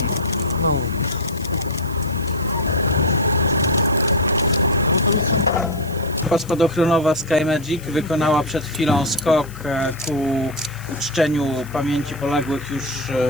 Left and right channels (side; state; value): left; noise; hiss, 21 dB below the sound